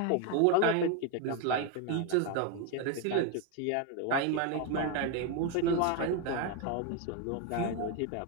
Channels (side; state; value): both; different; correlation 0.01